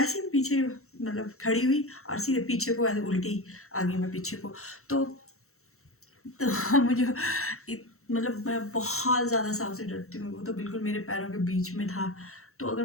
ही पीछे मतलब खड़ी हुई और सीधे पीछे को ऐसे उल्टी आ गई मैं पीछे को। तो मुझे मतलब मैं बहुत ज़्यादा साँप से डरती हूँ, वो तो बिल्कुल मेरे पैरों के बीच में था। तो अगर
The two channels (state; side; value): late; right; 0.63 ms